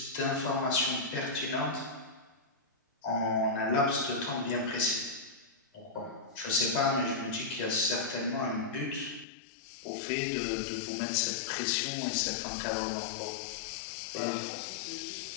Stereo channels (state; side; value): drops out; right; at 9.2 s